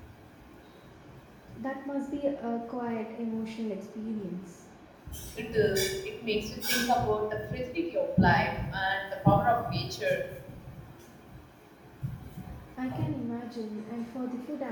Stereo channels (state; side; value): identical; both; correlation 1.00